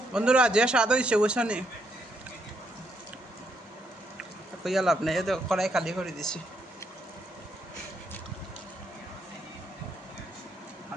বন্ধুরা যে স্বাদ হয়েছে বুঝছো নি কইয়া লাভ নেই তো কড়াই খালি করে দিছি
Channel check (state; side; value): normal; both; correlation 0.76